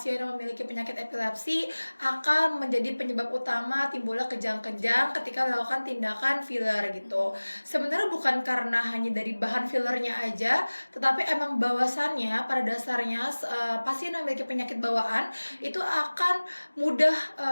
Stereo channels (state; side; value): inverted; both; correlation -1.00